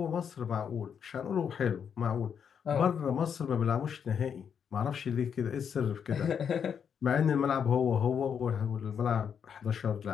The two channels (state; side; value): quieter; right; 7.5 dB